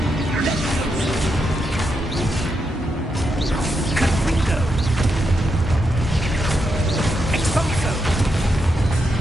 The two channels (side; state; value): both; normal; correlation 0.83